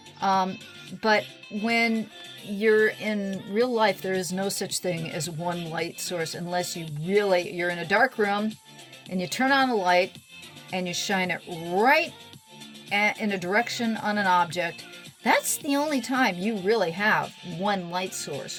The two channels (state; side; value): identical; both; correlation 1.00